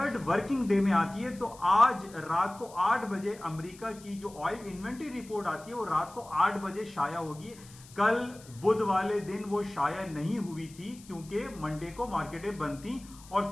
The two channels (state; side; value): noise; left; hiss, 21 dB below the sound